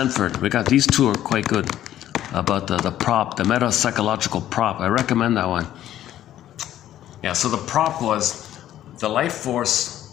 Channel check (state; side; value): quieter; right; 12.3 dB